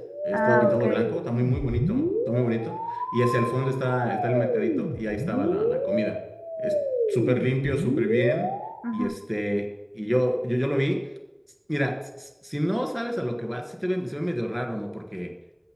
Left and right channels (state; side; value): identical; both; correlation 1.00